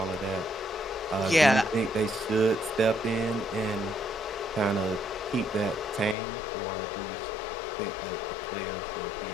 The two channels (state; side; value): drops out; right; at 6.2 s